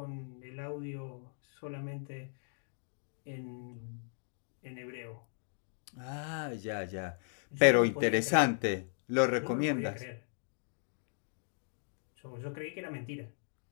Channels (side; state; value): right; silent; digital silence